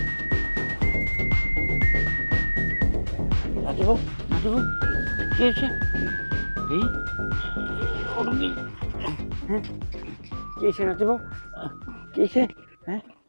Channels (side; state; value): both; inverted; correlation -1.00